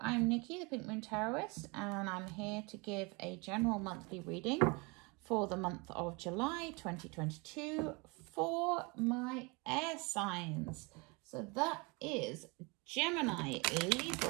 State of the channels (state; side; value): quieter; left; 28.5 dB